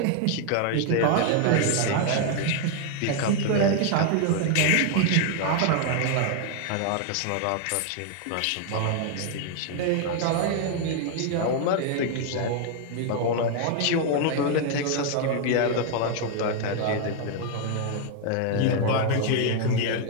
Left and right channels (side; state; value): both; different; correlation 0.00